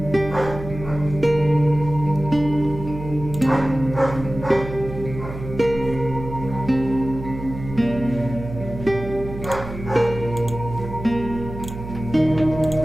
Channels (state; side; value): noise; right; hum, 10 dB below the sound